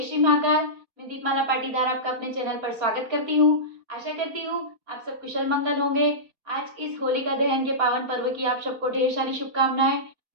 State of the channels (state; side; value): late; left; 4.3 ms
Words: श्री महाकाल। मैं दीपमाला पाटीदार आपका अपने चैनल पर स्वागत करती हूँ। आशा करती हूँ आप सब कुशल मंगल होंगे। आज इस होलिका दहन के पावन पर्व की आप सबको ढेर सारी शुभकामनाएं।